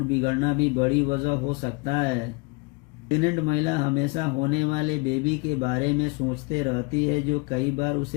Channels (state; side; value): quieter; right; 28.3 dB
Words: बिगड़ना भी बड़ी वजह हो सकता है। प्रेग्नेंट महिला हमेशा होने वाले बेबी के बारे में सोचते रहती है, जो कई बार